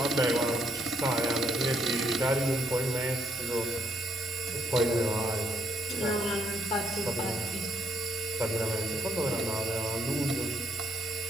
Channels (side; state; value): both; normal; correlation 0.73